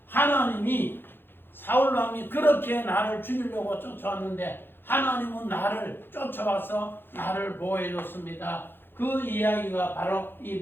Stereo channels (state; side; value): late; right; 0.10 ms